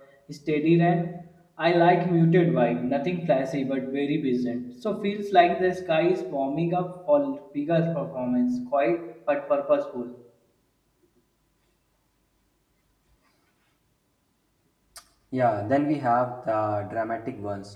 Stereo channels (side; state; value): both; identical; correlation 1.00